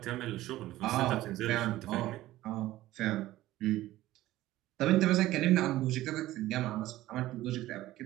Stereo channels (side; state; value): left; quieter; 15.7 dB